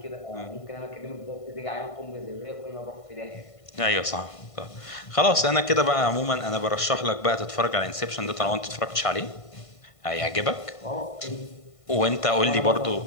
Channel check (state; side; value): late; right; 1.5 ms